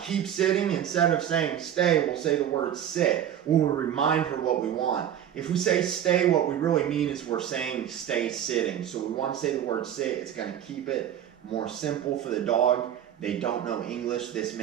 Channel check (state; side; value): quieter; left; 10.2 dB